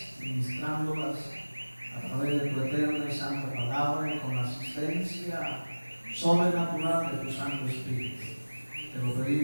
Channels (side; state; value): both; inverted; correlation -1.00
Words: ministrándolas a través de tu eterna y santa palabra y con la asistencia sobrenatural de tu Santo Espíritu. Te lo